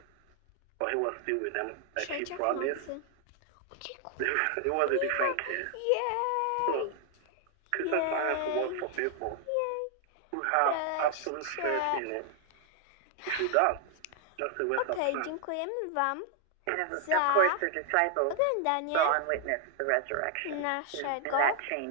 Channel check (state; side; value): different; both; correlation 0.00